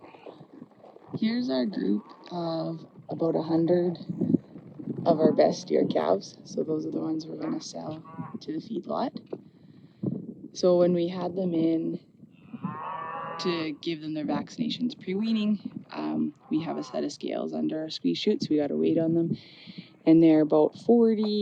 Here's our group of about 100 of our best steer calves. So those are the ones we're going to sell to the feedlot. So when we had them in to give them their vaccinations pre-weaning, we have a set of scales under our squeeze chute, so we got a weight on them. And they're about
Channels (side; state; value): both; identical; correlation 1.00